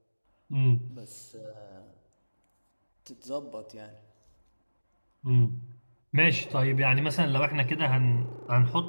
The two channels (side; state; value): both; inverted; correlation -1.00